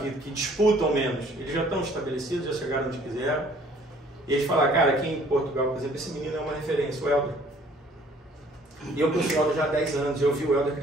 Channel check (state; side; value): normal; both; correlation 0.57